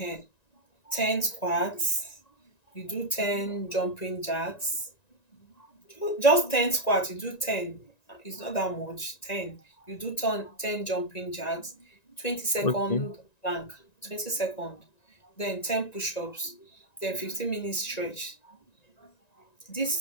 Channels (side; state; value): right; late; 1.9 ms